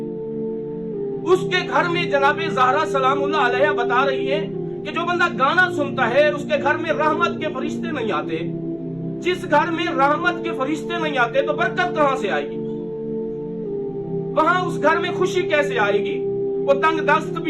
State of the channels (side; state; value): right; noise; rumble, 27 dB below the sound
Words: उसके घर में, जनाब ज़हरा सलामुल्लाह अलैहा बता रही है कि जो बंदा गाना सुनता है उसके घर में रहमत के फरिश्ते नहीं आते। जिस घर में रहमत के फरिश्ते नहीं आते तो बरकत कहां से आएगी? वहां उस घर में खुशी कैसे आएगी? वो तंग दस्त